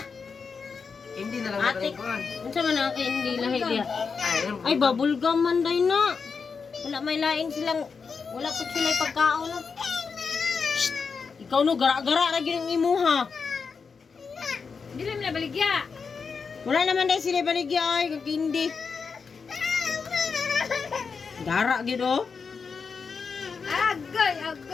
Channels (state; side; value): quieter; right; 5.4 dB